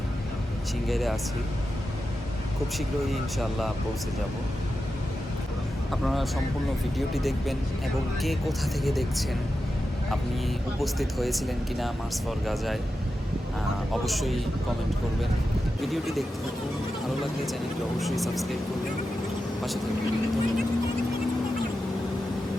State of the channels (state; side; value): normal; both; correlation 0.90